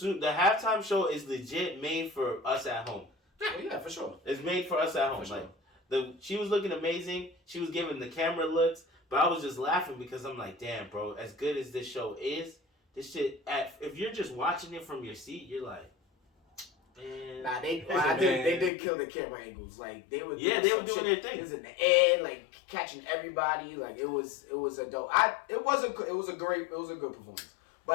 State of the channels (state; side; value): drops out; right; at 18.7 s